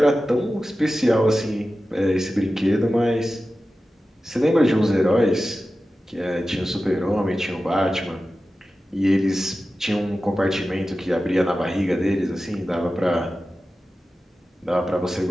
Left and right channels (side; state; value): both; normal; correlation 0.94